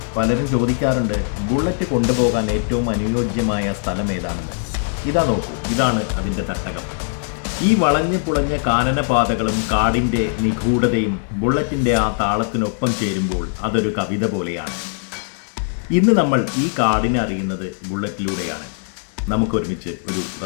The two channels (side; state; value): right; silent; digital silence